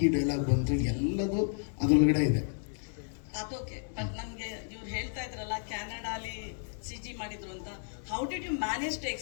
ಈ ಡೈಲಾಗ್ ಬಂತು, ಎಲ್ಲದು ಅದರೊಳಗಡೆ ಇದೆ. ಅದೋಕೆ. ಬಟ್ ನಮ್ಗೆ ಇವ್ರು ಹೇಳ್ತಾ ಇದ್ರಲ್ಲ ಕ್ಯಾನಡಾಲಿ CG ಮಾಡಿದ್ರು ಅಂತ. How did you manage to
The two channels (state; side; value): silent; right; 55 dB below the other